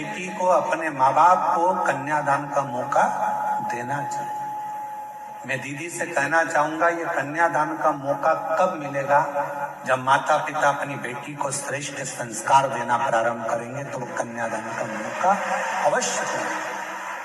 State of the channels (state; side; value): identical; both; correlation 1.00